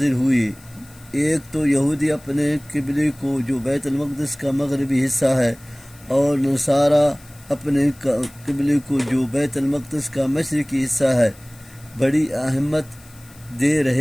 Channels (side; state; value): left; noise; hiss, 24 dB below the sound